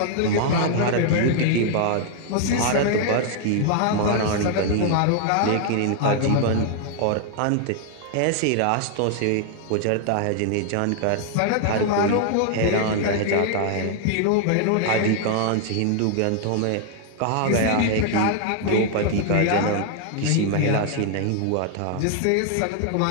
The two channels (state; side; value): different; both; correlation 0.00